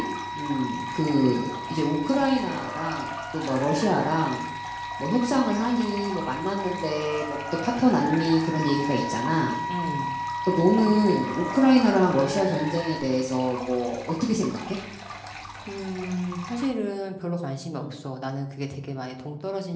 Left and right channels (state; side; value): identical; both; correlation 1.00